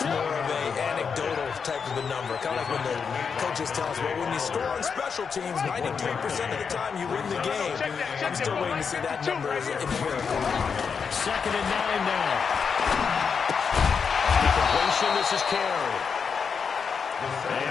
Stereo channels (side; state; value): right; quieter; 6.1 dB